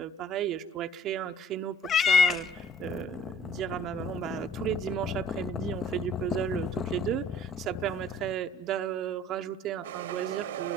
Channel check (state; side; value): normal; both; correlation 0.53